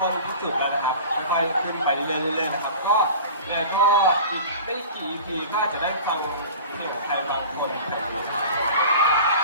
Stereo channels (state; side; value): inverted; both; correlation -0.38